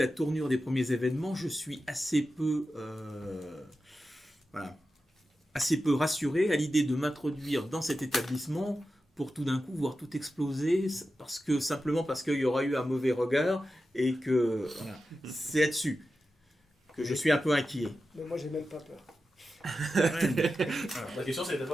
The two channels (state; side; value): normal; both; correlation 0.92